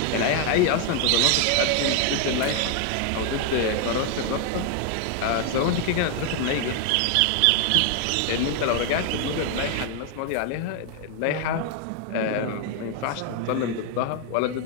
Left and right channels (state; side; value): different; both; correlation 0.00